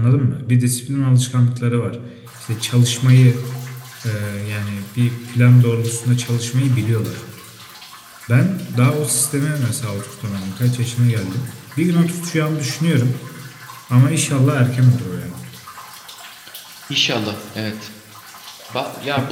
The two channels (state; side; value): identical; both; correlation 1.00